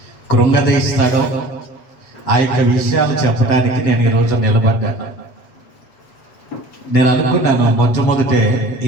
కృంగదీస్తాడో ఆ యొక్క విషయాలు చెప్పడానికి నేను ఈరోజు నిలబడ్డాను. నేను అనుకున్నాను, మొట్టమొదటే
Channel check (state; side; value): late; right; 7.8 ms